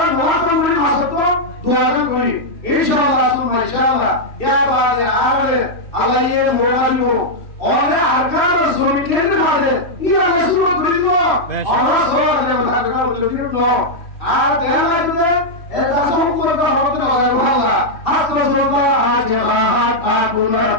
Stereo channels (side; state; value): right; late; 3.1 ms